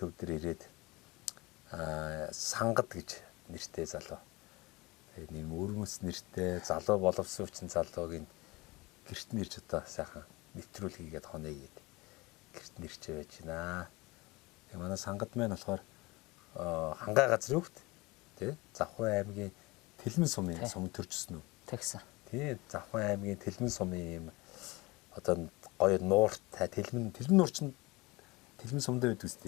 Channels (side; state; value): right; quieter; 23.3 dB